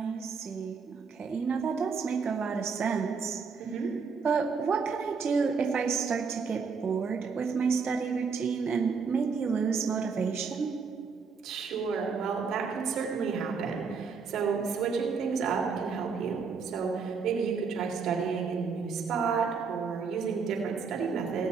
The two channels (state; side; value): quieter; left; 5.4 dB